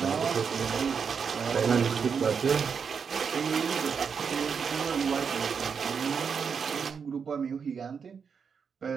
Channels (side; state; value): left; quieter; 6.3 dB